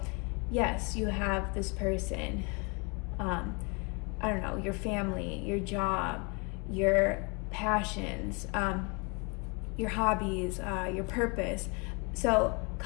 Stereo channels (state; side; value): quieter; right; 31.9 dB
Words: yes, you have this person, I don't know, your family, your job, your passions, your hobbies, your purpose. So